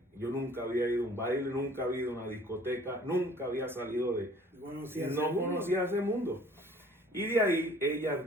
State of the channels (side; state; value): both; normal; correlation 0.52